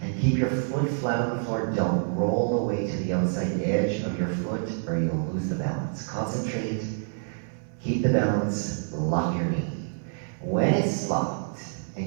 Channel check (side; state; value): left; silent; 60 dB below the other